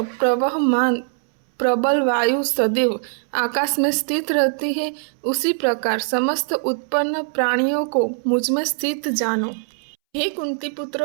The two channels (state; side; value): silent; left; 65 dB below the other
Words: प्रवहमान प्रबल वायु सदैव आकाश में स्थित रहती है, उसी प्रकार समस्त उत्पन्न प्राणियों को मुझ में स्थित जानो। हे कुंती